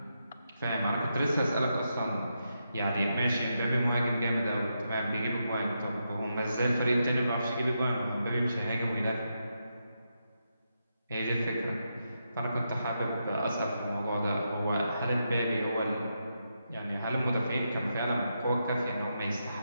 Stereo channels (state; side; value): inverted; both; correlation -0.84